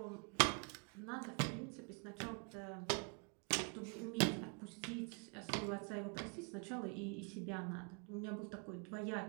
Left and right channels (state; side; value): quieter; left; 36.9 dB